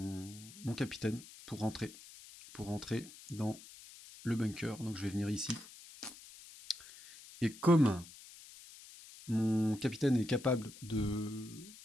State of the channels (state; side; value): noise; left; hiss, 18 dB below the sound